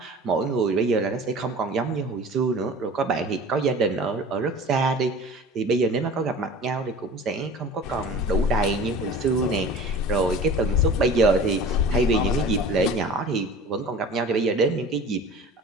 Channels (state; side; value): normal; both; correlation 0.40